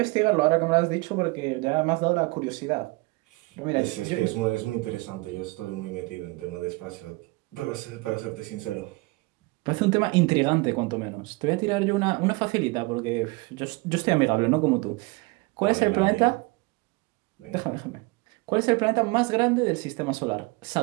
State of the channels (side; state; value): left; quieter; 24.8 dB